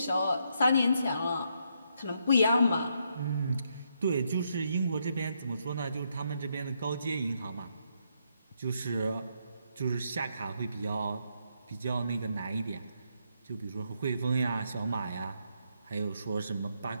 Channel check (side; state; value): both; inverted; correlation -0.77